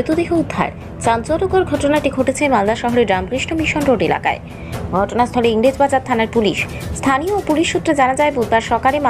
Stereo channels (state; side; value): identical; both; correlation 1.00